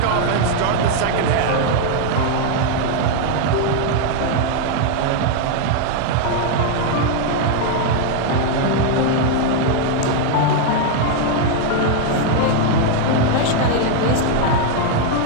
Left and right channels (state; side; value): different; both; correlation 0.00